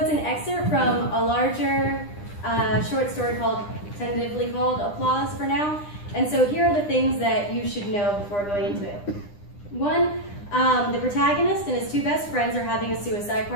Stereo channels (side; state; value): right; late; 9.9 ms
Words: an excerpt from a larger short story tentatively called Applause for Now, and so here are the things that you should know before going into it. One, the protagonist and his two best friends are having a suicide